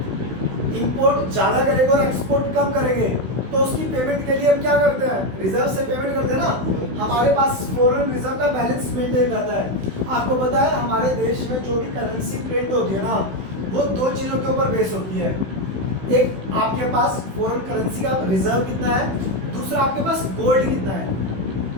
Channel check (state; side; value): late; left; 16 ms